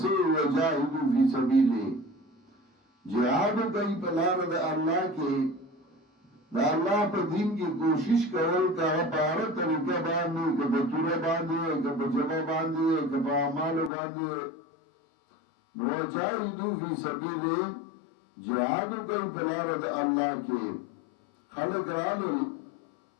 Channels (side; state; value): right; drops out; at 13.9 s